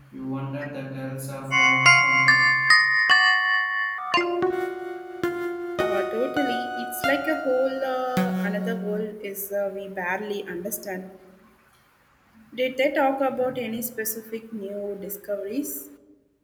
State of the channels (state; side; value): identical; both; correlation 1.00